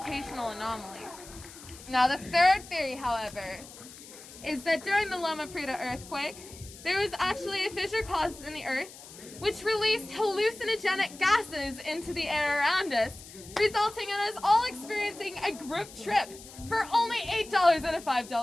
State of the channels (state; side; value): noise; left; hiss, 17 dB below the sound